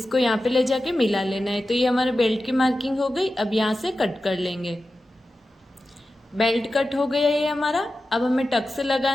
यहाँ पे ले जाके मिला लेना है। तो ये हमारे बेल्ट की मार्किंग हो गई। अब यहाँ से कट कर लेंगे। बेल्ट कट हो गया ये हमारा। अब हमें टक्स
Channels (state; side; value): normal; both; correlation 0.93